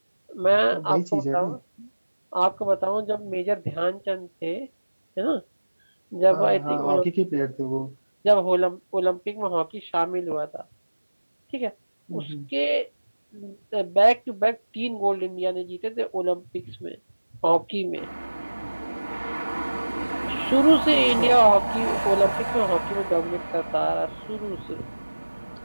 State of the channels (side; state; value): both; inverted; correlation -1.00